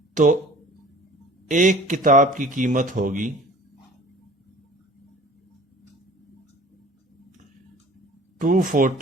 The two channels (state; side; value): normal; both; correlation 0.46